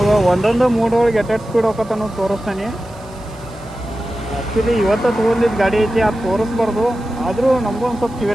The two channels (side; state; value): right; noise; hiss, 27 dB below the sound